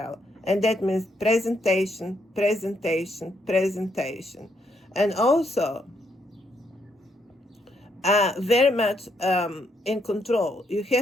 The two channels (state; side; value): normal; both; correlation 0.75